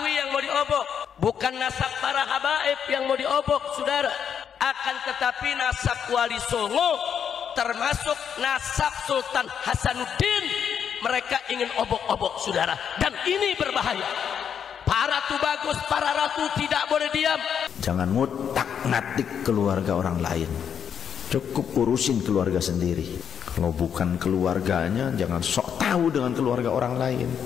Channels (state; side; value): quieter; right; 7.9 dB